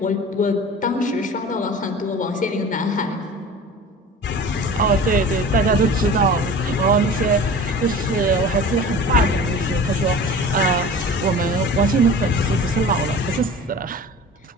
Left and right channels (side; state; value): both; normal; correlation 0.39